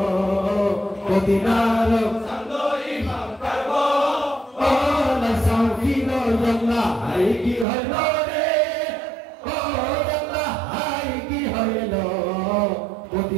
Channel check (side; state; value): left; drops out; at 7.7 s